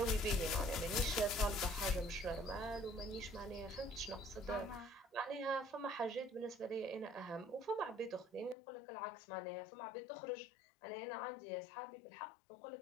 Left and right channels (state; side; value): drops out; right; at 8.6 s